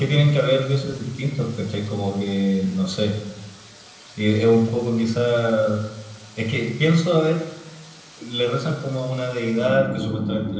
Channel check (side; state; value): both; identical; correlation 1.00